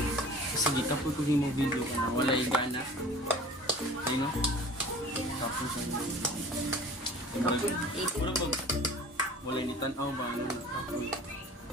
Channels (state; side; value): normal; both; correlation 0.44